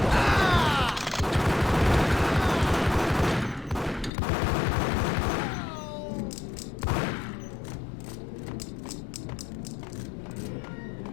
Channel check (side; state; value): right; drops out; at 4.1 s